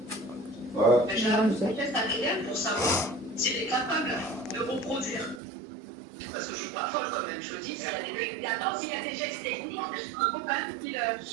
Ouais. J'ai un test ADN pour savoir s'il est capable de reproduire. Parce que je suis pas folle quand même, je dis, s'il y a des... Attends, s'il y a des gestes techniques, il faut quand même qu'il...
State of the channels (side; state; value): left; drops out; at 5.4 s